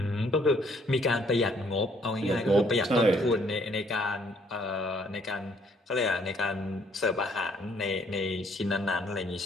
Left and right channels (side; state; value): both; normal; correlation 0.65